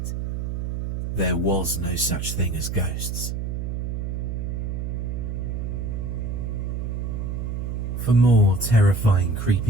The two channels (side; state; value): right; noise; hum, 3 dB below the sound